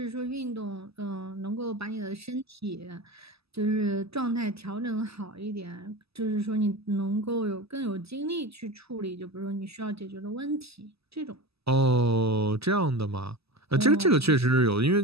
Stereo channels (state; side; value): late; left; 0.78 ms